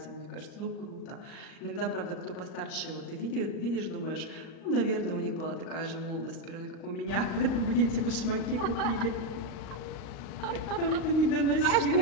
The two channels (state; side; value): late; right; 38 ms